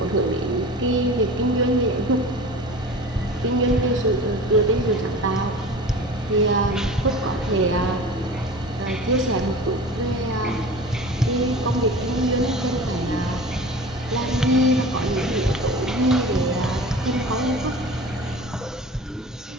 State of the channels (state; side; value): normal; both; correlation 0.37